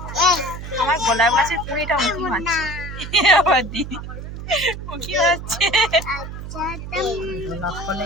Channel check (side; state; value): right; noise; hum, 9 dB below the sound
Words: আমার গোলাপ গাছের কুড়িটা মুখি মারছে, আবার দিদি মুখি মারছে।